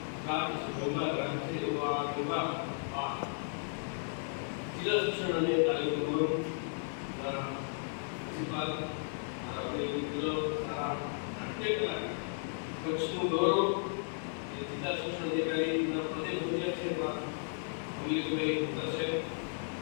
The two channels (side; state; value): right; silent; digital silence